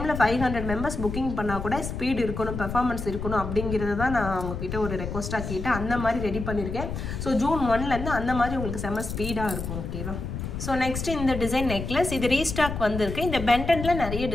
500 members புக்கிங் பண்ணால் கூட ஸ்பீட் இருக்கணும், பெர்ஃபார்மன்ஸ் இருக்கணும் அப்படிங்கிறது தான் நான் உங்ககிட்ட ஒரு ரெக்வஸ்ட்டாக கேட்டேன். அந்த மாதிரி ரெடி பண்ணியிருக்கேன். ஸோ ஜூன் 1 அந்த மாதிரி உங்களுக்கு செம்ம ஸ்பீடாக இருக்கும் ஓகேவா. ஸோ நெக்ஸ்ட் இந்த டிசைன் நெக்லஸ், இது ரீஸ்டாக் வந்திருக்கு. இந்த பெண்டனில் நிறைய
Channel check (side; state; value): left; noise; rumble, 6 dB below the sound